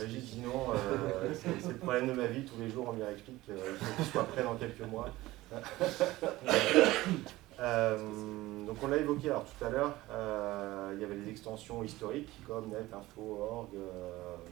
Régis dit non, c'est le problème de ma vie. Tous les jours, on lui explique qu'il faut qu'il soit prêt dans quelques mois. Donc on l'a évoqué alors tout à l'heure, il y avait des extensions historiques comme net, info, org,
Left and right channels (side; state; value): left; quieter; 17.9 dB